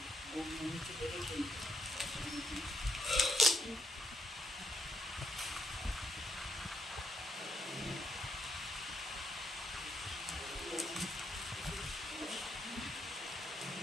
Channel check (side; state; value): both; normal; correlation 0.77